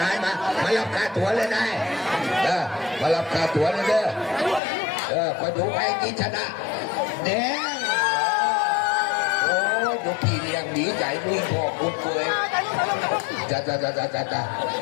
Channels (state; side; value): drops out; right; at 4.6 s